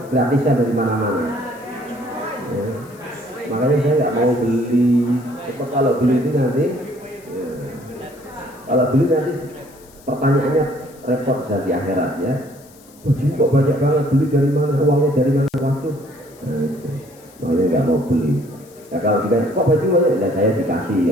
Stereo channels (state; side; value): noise; left; hiss, 25 dB below the sound